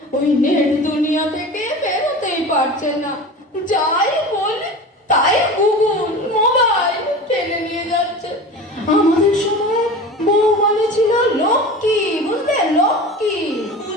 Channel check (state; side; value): normal; both; correlation 0.33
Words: ওই নেট দুনিয়া থেকে বেরোতেই পারছে না। যাই বলে তাই গুগল, মোবাইল টেনে নিয়ে যাচ্ছে। আমাদের সময় বউ মানে ছিল লক্ষ্মী, বুঝলে? লক্ষ্মী।